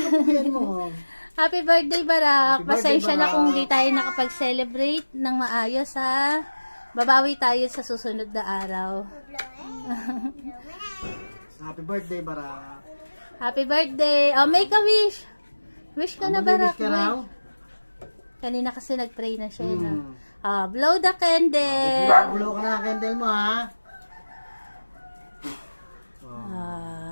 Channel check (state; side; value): inverted; both; correlation -1.00